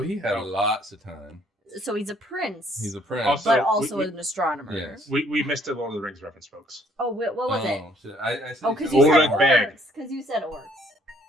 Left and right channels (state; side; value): normal; both; correlation 0.64